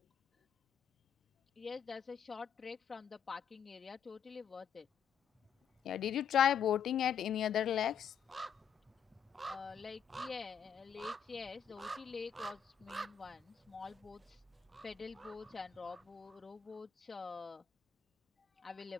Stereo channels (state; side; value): quieter; right; 7.7 dB